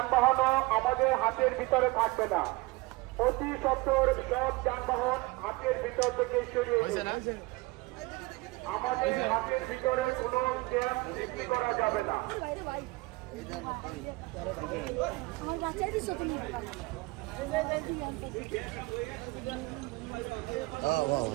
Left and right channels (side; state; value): left; quieter; 22.7 dB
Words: আমাদের হাতের ভিতরে থাকবে না। অতি সত্বর সব যানবাহন হাতের ভিতর থেকে সরিয়ে দিন। আমাদের হাতের ভিতরে কোনো ক্যাম্প সৃষ্টি করা যাবে না। আমার বাচ্চা দিছো তুমি